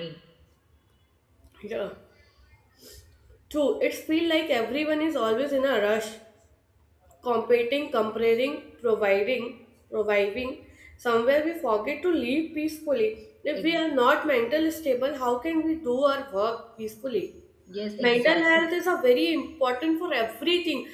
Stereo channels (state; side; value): identical; both; correlation 1.00